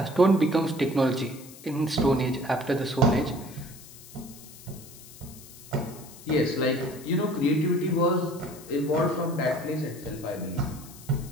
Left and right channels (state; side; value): noise; left; hiss, 18 dB below the sound